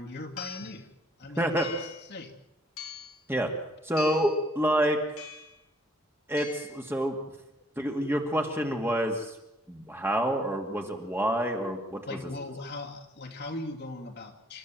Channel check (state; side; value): normal; both; correlation 0.64